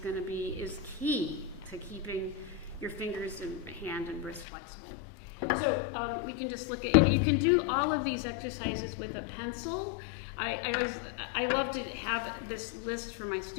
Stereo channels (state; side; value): drops out; right; at 4.5 s